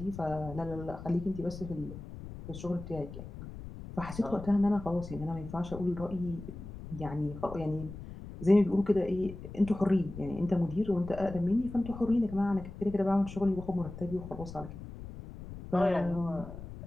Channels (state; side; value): noise; left; rumble, 12 dB below the sound